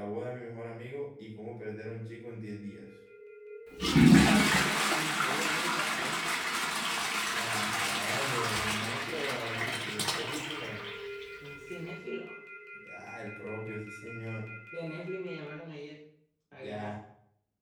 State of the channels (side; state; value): both; identical; correlation 1.00